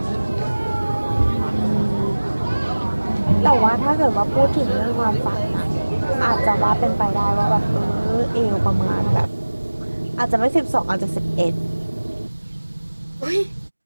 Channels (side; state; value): both; inverted; correlation -1.00